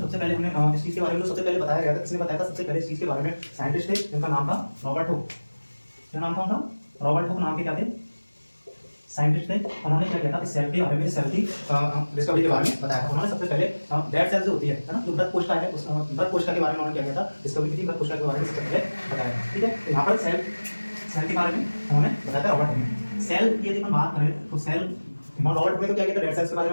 सबसे पहले हमने इस चीज के बारे में तो सबसे पहले बताया गया था। किसने बताया था सबसे पहले इस चीज के बारे में? साइंटिस्ट थे जिनका नाम था रॉबर्ट हुक। क्या नाम था उनका? रॉबर्ट हुक नाम के क्या थे, साइंटिस्ट थे। उन्होंने क्या किया था, इस सेल के बारे में, सेल की डिस्कवरी के बारे में बताया था। उन्होंने सबसे पहले डेड सेल जो होती है ना, जो मृत कोशिका है, उस मृत कोशिका के बारे में उन्होंने क्या किया था, डिस्कवरी की थी। मृत कोशिका के बारे में सबसे पहले बताया था। ठीक है, तो यहाँ पर सेल के बारे में उन्होंने बताया था रॉबर्ट हुक ने। सेल की यदि हम बात करें तो सेल, रॉबर्ट हुक ने तो क्या किया था, डेड सेल्स के बारे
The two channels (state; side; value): inverted; both; correlation -1.00